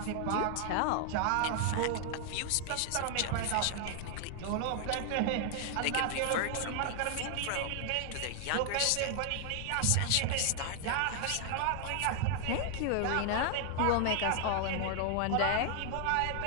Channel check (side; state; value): both; different; correlation 0.00